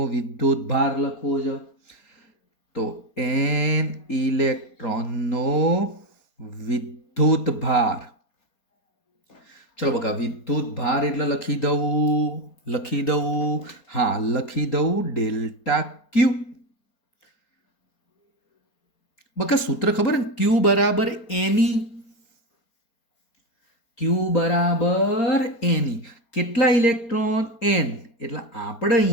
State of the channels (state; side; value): late; right; 4.3 ms